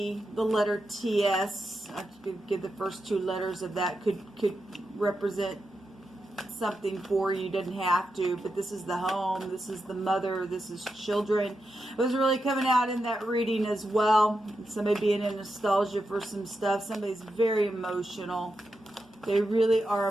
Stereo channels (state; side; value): normal; both; correlation 0.87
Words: the letter TS. I could give the first two letters of that could represent something for you. Doesn't have to, but this is the home, this is the mother, this is children. It was really coming out in that reading as well. Somebody being in nostalgia for some stuff. Somebody's very emotional. They really are